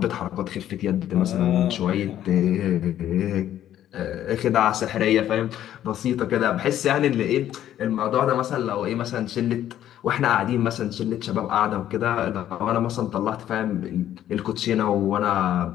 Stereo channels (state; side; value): quieter; right; 11.6 dB